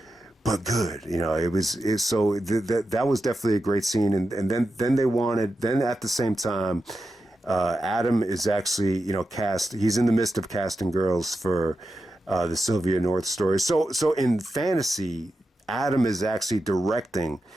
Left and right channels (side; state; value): both; normal; correlation 0.89